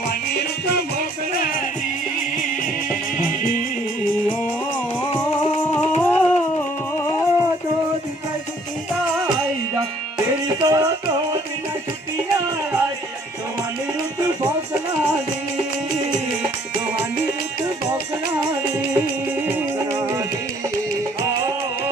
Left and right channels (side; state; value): both; normal; correlation 0.60